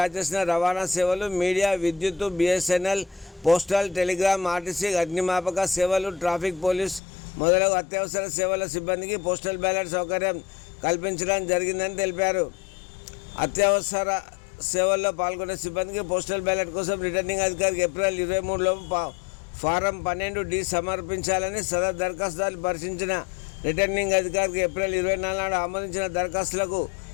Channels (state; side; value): drops out; right; at 7.0 s